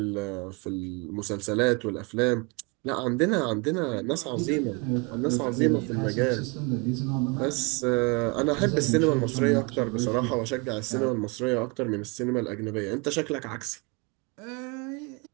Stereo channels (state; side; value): quieter; left; 28.8 dB